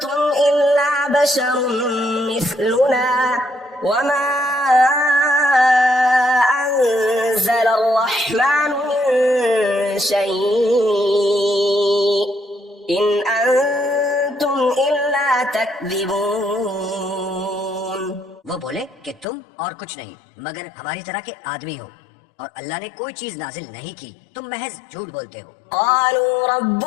إلا بشر مثلنا وما أنزل الرحمن من شيء إن أنتم إلا تكذبون. وہ بولے کہ تم اور کچھ نہیں مگر ہماری طرح کے آدمی ہو، اور اللہ نے کوئی چیز نازل نہیں کی، تم محض جھوٹ بولتے ہو. قالوا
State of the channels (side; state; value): right; drops out; at 19.2 s